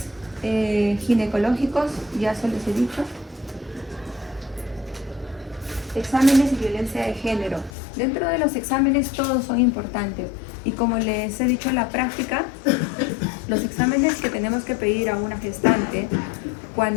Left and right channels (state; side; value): drops out; right; at 7.7 s